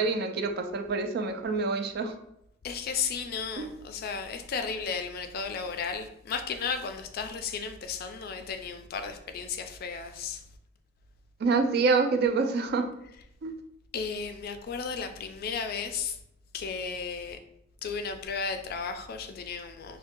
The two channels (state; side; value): normal; both; correlation 0.18